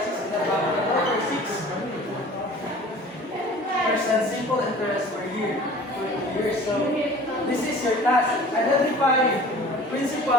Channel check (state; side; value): normal; both; correlation 0.45